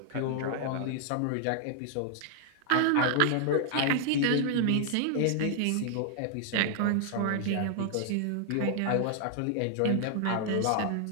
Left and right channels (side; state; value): both; different; correlation -0.01